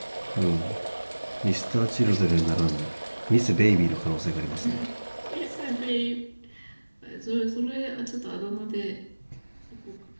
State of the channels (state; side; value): inverted; both; correlation -1.00